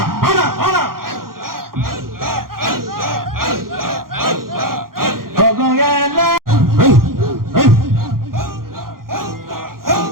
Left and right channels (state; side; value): late; left; 0.92 ms